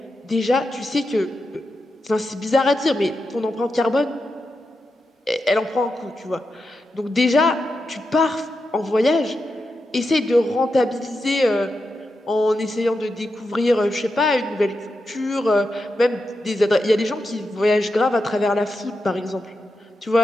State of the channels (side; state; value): both; normal; correlation 0.88